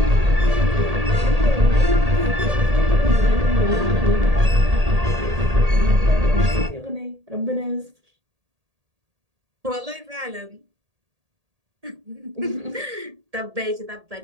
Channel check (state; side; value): late; left; 1.8 ms